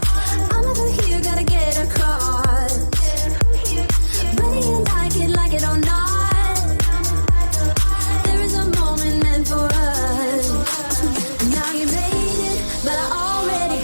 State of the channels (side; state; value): both; inverted; correlation -1.00